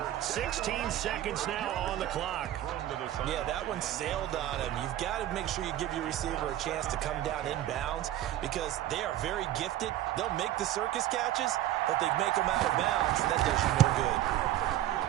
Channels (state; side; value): quieter; left; 13.2 dB